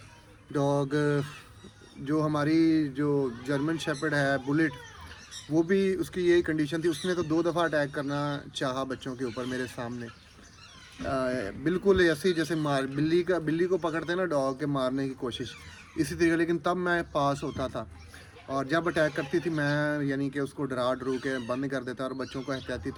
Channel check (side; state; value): both; identical; correlation 1.00